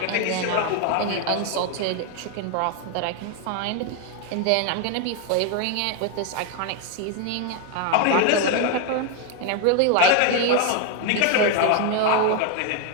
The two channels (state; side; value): different; both; correlation 0.01